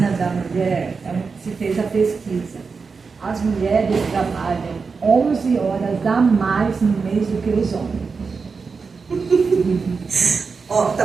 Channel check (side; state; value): left; quieter; 5.0 dB